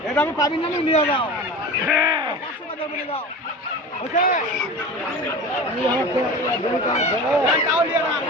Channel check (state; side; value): normal; both; correlation 0.33